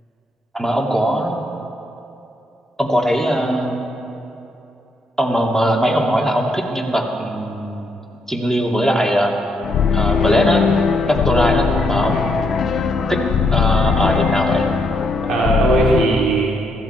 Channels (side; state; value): both; normal; correlation 0.75